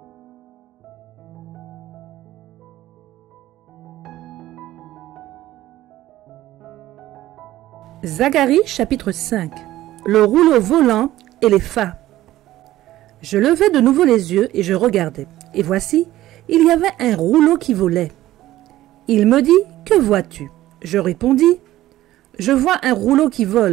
Zacharie chapitre 5. Le rouleau volant et les phas. Je levai de nouveau les yeux et je regardai. Et voici, il y avait un rouleau qui volait. Il me dit, que vois-tu? Je répondis, je vois un rouleau qui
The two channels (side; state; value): left; quieter; 14.9 dB